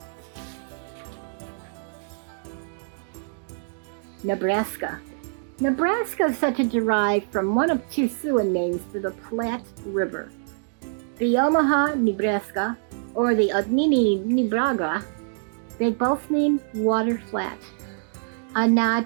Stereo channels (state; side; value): silent; left; digital silence